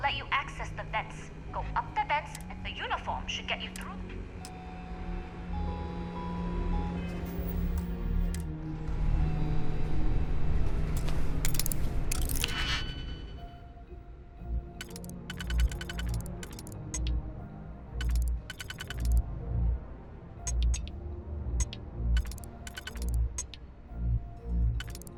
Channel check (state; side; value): identical; both; correlation 1.00